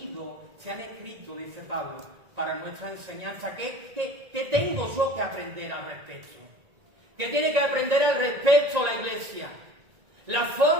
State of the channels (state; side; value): late; left; 1.9 ms